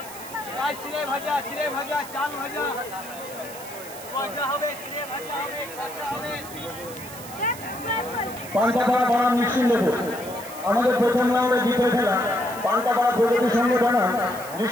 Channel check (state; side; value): noise; right; hiss, 15 dB below the sound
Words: চিড়ে ভাজা, চিড়ে ভাজা, চাল ভাজা, ভাজা হবে, চিড়ে ভাজা হবে, ভাজা হবে। পান্তাপাড়া বনাম নিশ্চিন্দপুর আমাদের প্রথম রাউন্ডে দ্বিতীয় খেলা। পান্তাপাড়া প্রগতি সংঘ বনাম